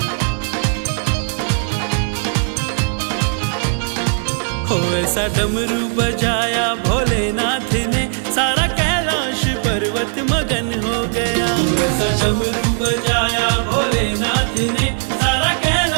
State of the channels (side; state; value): left; silent; 56 dB below the other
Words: हो ऐसा डमरू बजाया भोलेनाथ ने, सारा कैलाश पर्वत मगन हो गया। ऐसा डमरू बजाया भोलेनाथ ने, सारा